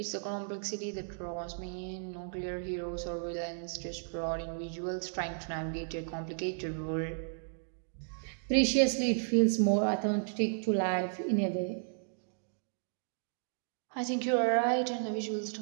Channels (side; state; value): left; silent; digital silence